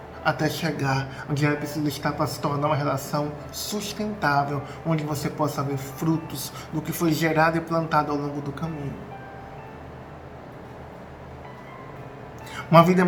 até chegar onde ela precisa estar para se tornar uma relação sustentável, onde você possa ver frutos do que foi gerado e plantado ao longo do caminho. Uma vida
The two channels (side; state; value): both; identical; correlation 1.00